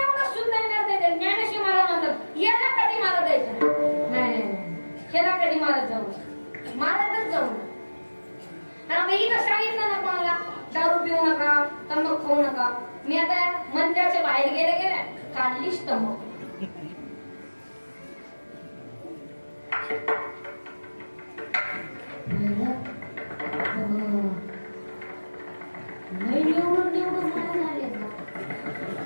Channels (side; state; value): both; inverted; correlation -1.00